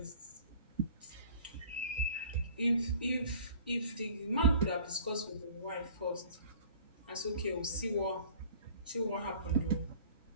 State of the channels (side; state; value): both; inverted; correlation -0.48